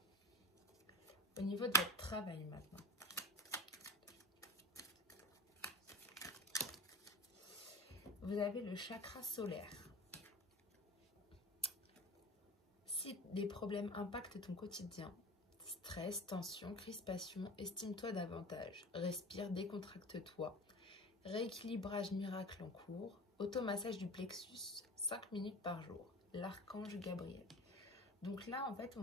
Au niveau de votre travail maintenant, vous avez le chakra solaire. Si des problèmes impactent ton quotidien, stress, tension, crispation, estime-toi davantage, respire, décontracte-toi. Rééquilibrage miracle en cours, automassage du plexus, 5 minutes par jour, l'archange Gabriel. Donc là, en fait, on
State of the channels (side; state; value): both; normal; correlation 0.34